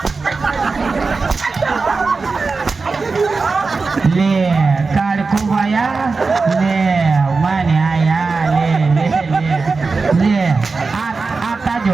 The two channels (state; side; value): quieter; left; 4.2 dB